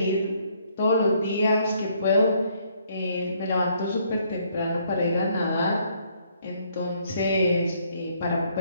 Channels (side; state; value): both; inverted; correlation -0.68